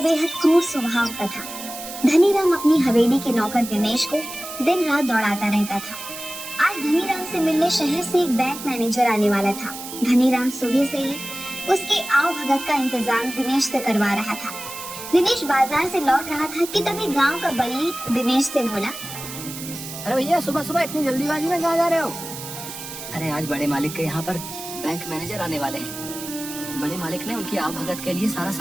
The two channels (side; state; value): right; noise; hiss, 10 dB below the sound